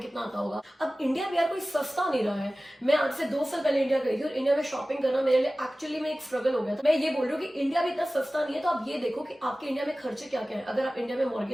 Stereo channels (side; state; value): both; normal; correlation 0.97